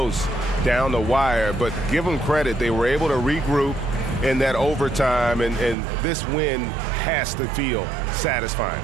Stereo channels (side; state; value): left; drops out; at 5.8 s